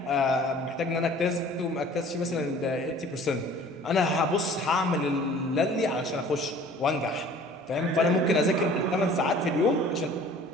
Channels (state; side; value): normal; both; correlation 0.49